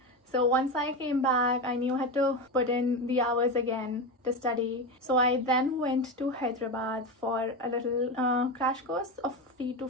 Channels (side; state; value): both; normal; correlation 0.18